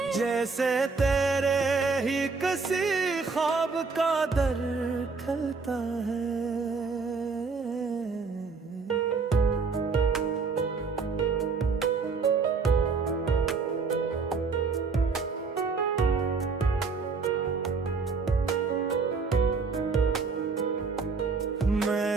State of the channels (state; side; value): quieter; left; 4.7 dB